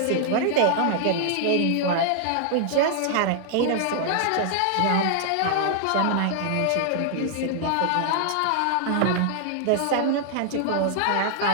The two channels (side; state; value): both; different; correlation -0.01